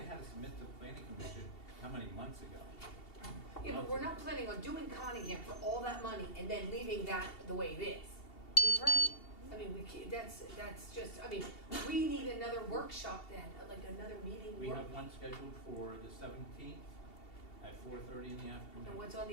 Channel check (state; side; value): late; right; 2.7 ms